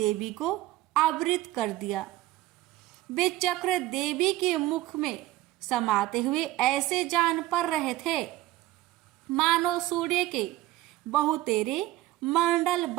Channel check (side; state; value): left; quieter; 16.2 dB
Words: को आवृत कर दिया। वे चक्र देवी के मुख में समाते हुए ऐसे जान पड़ रहे थे मानो सूर्य के बहुतेरे मंडल